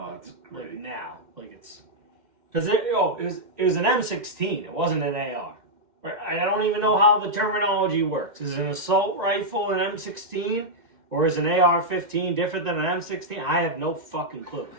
it's great. Like now, like it's because it was an M16. It wasn't an AR. Right? I don't even know how the terminology works. Is an assault rifle an M16? Or is an AR-15 different than an M16? I have no fucking clue.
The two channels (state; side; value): late; left; 2.1 ms